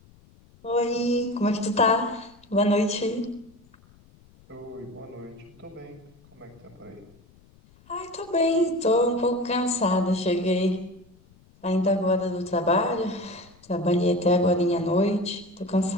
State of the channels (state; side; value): noise; left; rumble, 28 dB below the sound